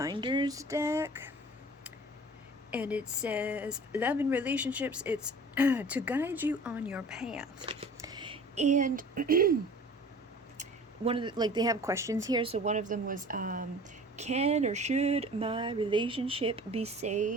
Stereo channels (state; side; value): normal; both; correlation 0.44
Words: deck, and it says love and relationships. It's to guide you on your path. And one of the, like, they have questions here. So one of them was, can or should my relationship be